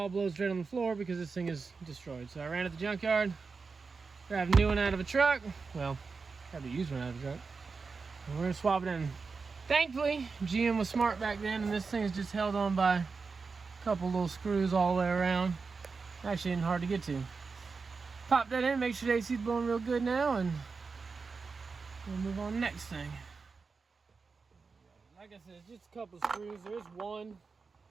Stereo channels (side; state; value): left; quieter; 4.7 dB